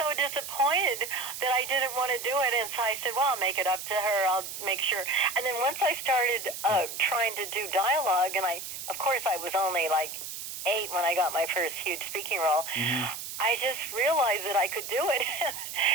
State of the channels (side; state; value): right; noise; hiss, 8 dB below the sound